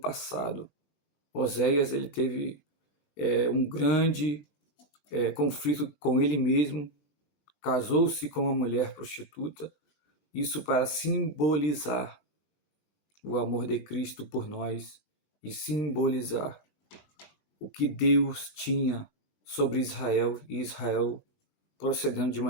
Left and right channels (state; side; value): late; right; 19 ms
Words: Oséias, ele teve um grande conflito com ele mesmo, casou-se com uma mulher prostituta, isso para simbolizar o amor de Cristo por nós e simbolizar o que Deus tinha sobre Israel e Israel procedendo de